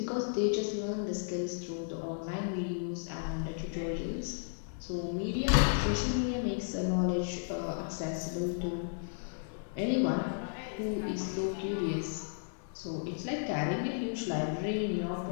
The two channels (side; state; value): right; silent; digital silence